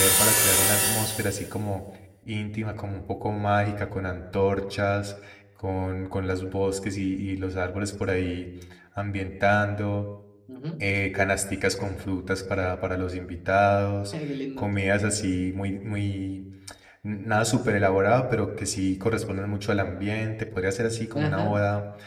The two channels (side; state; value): both; identical; correlation 1.00